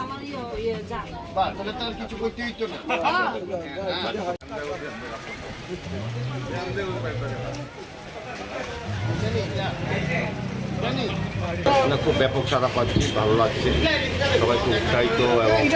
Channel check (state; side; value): identical; both; correlation 1.00